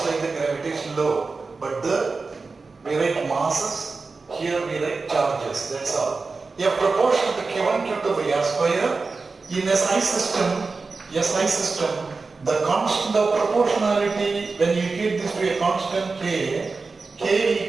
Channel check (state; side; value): quieter; left; 4.1 dB